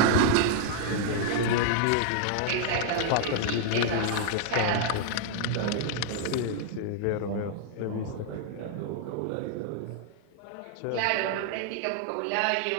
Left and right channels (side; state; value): both; different; correlation 0.00